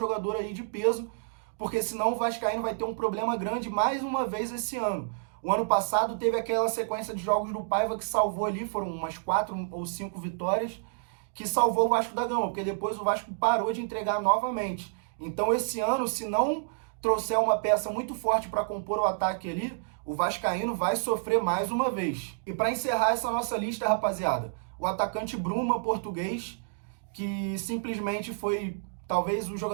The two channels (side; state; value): left; silent; digital silence